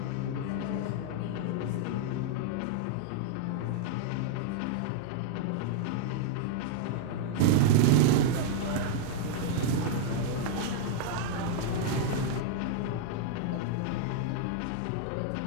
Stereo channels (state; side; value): different; both; correlation -0.01